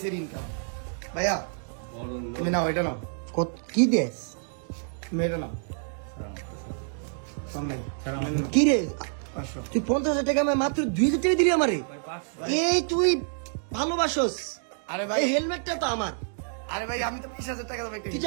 এর ইনকাম। ভাইয়া তুমি নাও, এটা নাও, কত কি দেস তুমি এটা নাও। সামনে কি রে 500। তুই 50,000 টাকা আমি মাত্র 2,000 টাকা দিলি আমারে। এই তুই ভালোবাসোস। আরে ভাই, এই হেলমেটটা তো আমার। আরে ভাই আমি তো 20,000 টাকা দেব একটা। তুই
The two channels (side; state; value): left; silent; digital silence